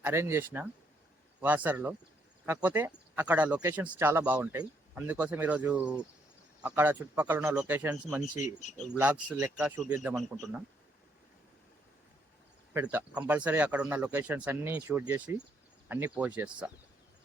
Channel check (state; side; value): normal; both; correlation 0.72